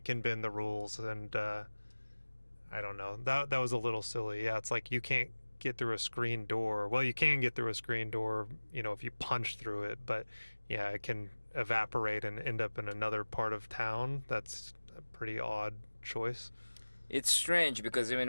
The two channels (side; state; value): both; inverted; correlation -1.00